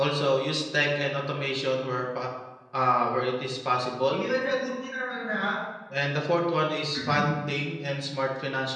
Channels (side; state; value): both; identical; correlation 1.00